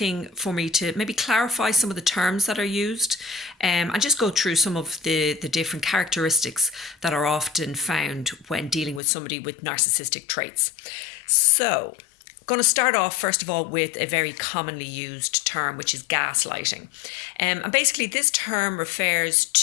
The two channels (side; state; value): right; drops out; at 9.0 s